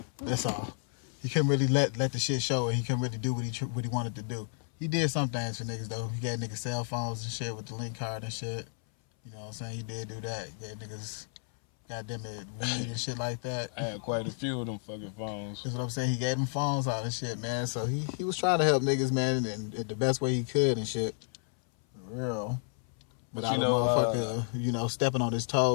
That's all. He couldn't really let the shit show, and he couldn't really do what he wanted to do. He did some things for niggas though. He got niggas cell phones and shit with the link card and shit. You know what I'm saying? He did do that. He got niggas, goddamn it, weed and shit like that. I had quite a few of them fucking phones. That's what I'm saying. He gave them phones out and shit, man. So he was trying to help niggas, man, and the best way he could and shit. For real. But you know, motherfucker, stepping on his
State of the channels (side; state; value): right; silent; 57 dB below the other